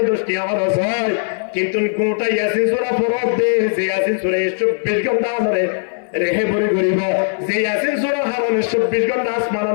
10 টাকা খরচ হয় কিন্তু গোটা ইয়াসিন সূরা ফরজ দে যে ইয়াসিন সূরা 24 ঘন্টা ধরে রেহে বরি করিব যে ইয়াসিন সূরা হারন 24 ঘন্টা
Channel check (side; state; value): right; silent; 63 dB below the other